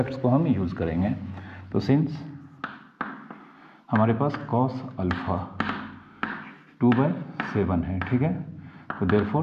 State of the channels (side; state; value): both; identical; correlation 1.00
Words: को हम यूज़ करेंगे। तो सिंस हमारे पास cos अल्फ़ा 2/7 है। ठीक है, तो